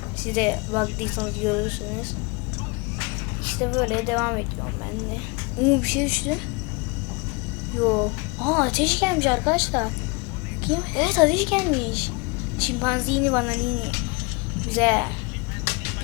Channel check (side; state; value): right; quieter; 28.8 dB